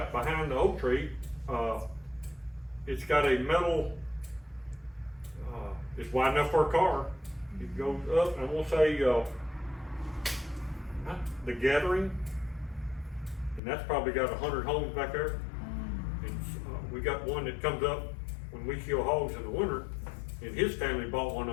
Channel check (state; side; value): drops out; right; at 13.6 s